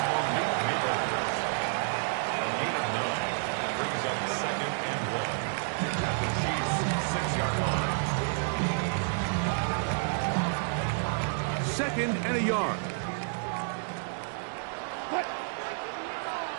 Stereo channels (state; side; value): silent; left; digital silence